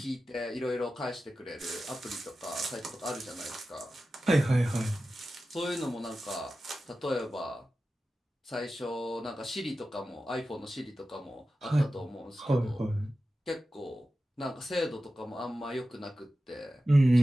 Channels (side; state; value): both; normal; correlation 0.93